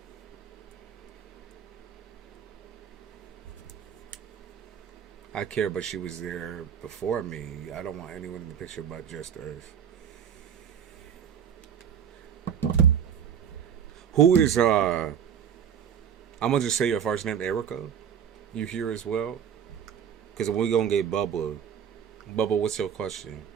I care, but she was there before me. I don't want anyone in the picture but just Earth. Who is I'm gonna just say your first name, Erica. You here as well? Because we're gonna get Bubba. Bubba, what's your question?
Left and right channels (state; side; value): quieter; left; 8.3 dB